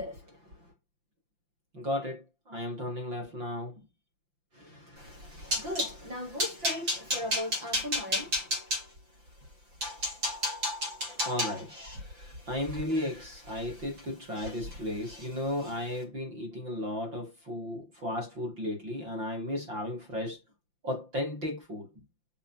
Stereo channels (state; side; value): late; left; 5.8 ms